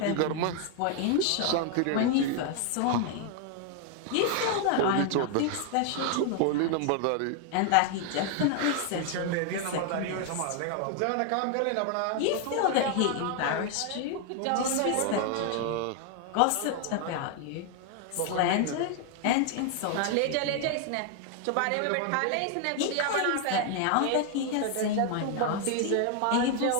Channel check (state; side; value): different; both; correlation 0.00